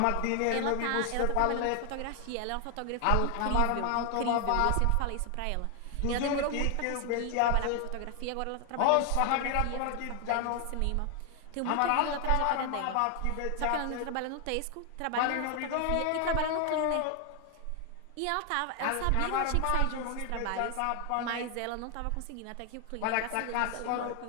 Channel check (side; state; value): both; different; correlation 0.00